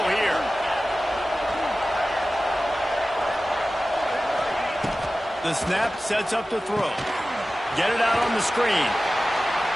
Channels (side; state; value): both; normal; correlation 0.96